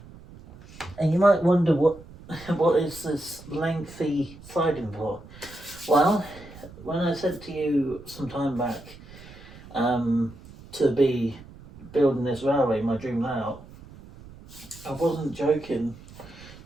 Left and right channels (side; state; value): right; noise; rumble, 19 dB below the sound